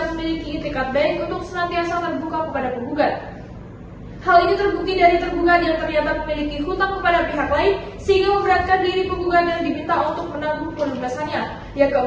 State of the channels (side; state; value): both; identical; correlation 1.00